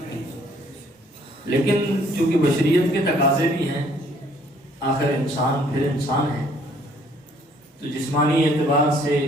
لیکن چونکہ بشریت کے تقاضے بھی ہیں، آخر انسان پھر انسان ہے، تو جسمانی اعتبار سے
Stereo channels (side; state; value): both; normal; correlation 0.62